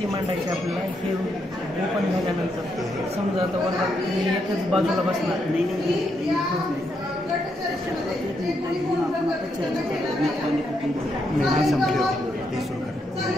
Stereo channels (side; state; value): both; normal; correlation 0.79